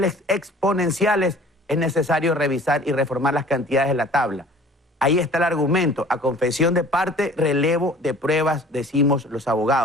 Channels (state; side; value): normal; both; correlation 0.49